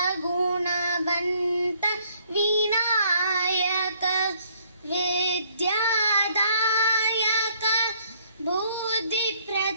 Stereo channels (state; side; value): inverted; both; correlation -0.64